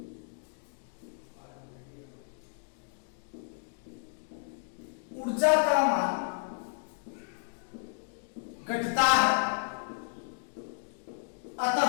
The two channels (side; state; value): right; silent; digital silence